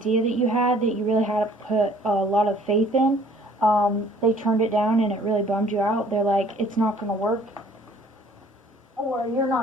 that you had, that you really had to put a lot of faith in, they turned it down and it really bummed you out. They're like, it's not going to work, or you're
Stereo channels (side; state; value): both; normal; correlation 0.56